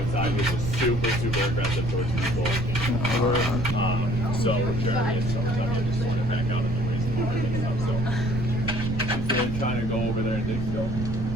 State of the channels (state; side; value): noise; right; rumble, 4 dB below the sound